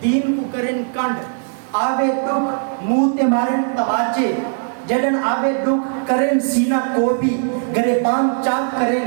دین کو کرن کنڈ آوے دکھ منہ تے مارن تماچے جدن آوے دکھ کرن سینہ کو بھی گریبان چاک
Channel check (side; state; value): left; silent; 63 dB below the other